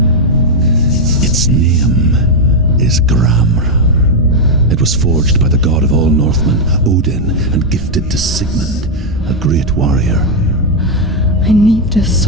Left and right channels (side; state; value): both; normal; correlation 0.01